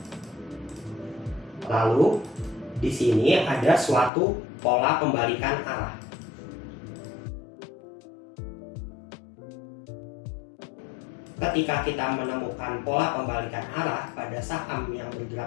Lalu, di sini ada suatu pola pembalikan arah. Ketika kita menemukan pola pembalikan arah pada saham yang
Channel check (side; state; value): right; drops out; at 4.1 s